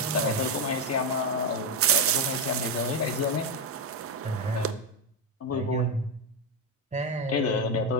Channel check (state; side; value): normal; both; correlation 0.07